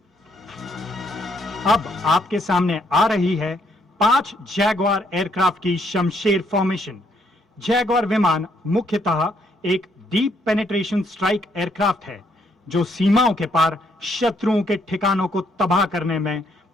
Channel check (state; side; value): normal; both; correlation 0.71